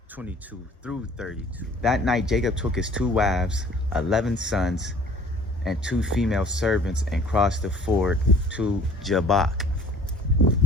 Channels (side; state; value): both; normal; correlation 0.51